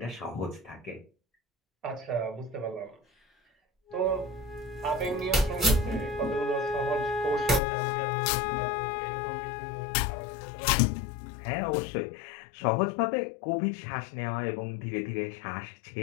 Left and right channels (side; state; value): right; drops out; at 7.6 s